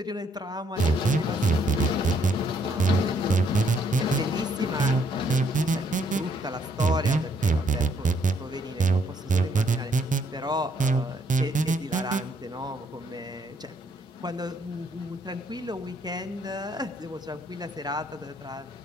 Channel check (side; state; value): both; normal; correlation 0.70